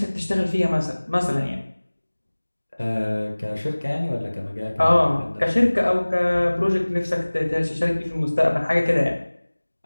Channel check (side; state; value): both; inverted; correlation -1.00